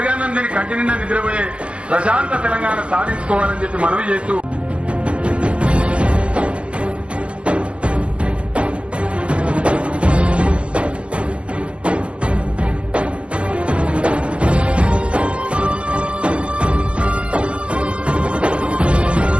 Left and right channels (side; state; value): left; late; 0.059 ms